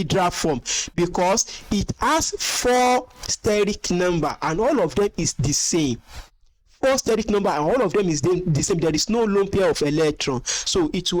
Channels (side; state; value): both; identical; correlation 1.00